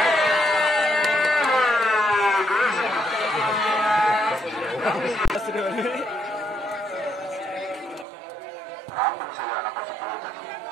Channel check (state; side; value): drops out; left; at 8.1 s